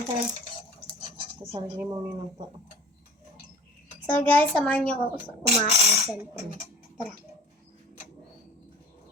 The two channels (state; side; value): normal; both; correlation 0.41